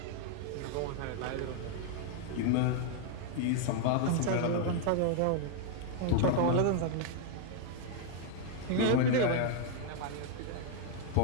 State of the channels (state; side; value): different; both; correlation 0.00